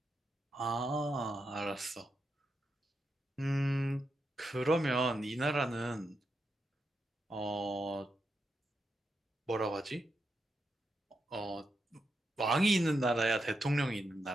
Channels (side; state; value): both; normal; correlation 0.85